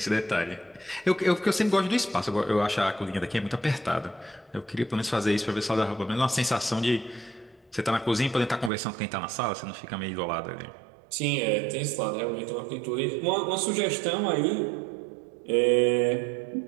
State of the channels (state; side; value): drops out; left; at 8.7 s